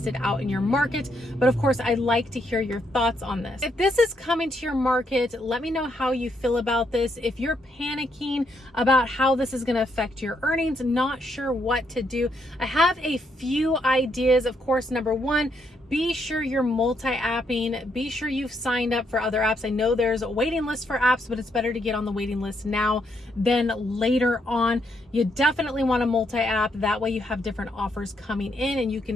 it out in your market. But of course, I'd like to hear your thoughts on this. If this is coming to your market, let me know how you feel about this. If you're panicking about how this is going to affect your earnings, not sure what to do, I have a few ideas. Of course, number one, be sure you're multi-apping. Be sure you've signed up for other apps. I know there's a waiting list for apps, but it's better to get on the waiting list now than later on. You definitely want to multi-app. That way you have different offers coming in and you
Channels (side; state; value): both; normal; correlation 0.76